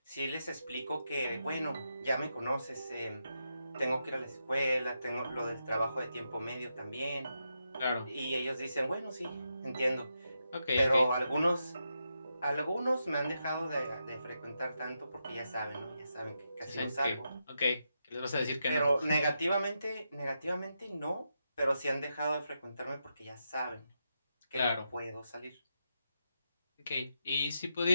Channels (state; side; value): inverted; both; correlation -0.85